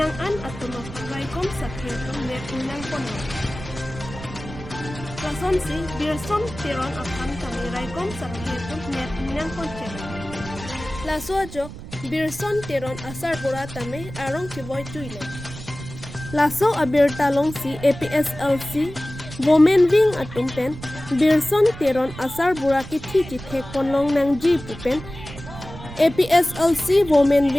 atulok raikom sakhe tum net pinang pono. Plason si Birson Tiron aphan kami raikom sakhe tum net pinang ponche. Plaso jok Birson Tiron asar bura tame arong kiboy tuile. Laso abir talong si APHLC Women Wing atumpen Birson Teron asar buraki thi thek ponlong nang ji pupen APHLC Women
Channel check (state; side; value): noise; right; rumble, 13 dB below the sound